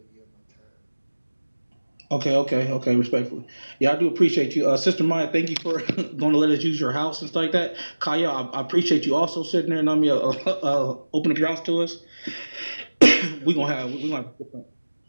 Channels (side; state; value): both; inverted; correlation -1.00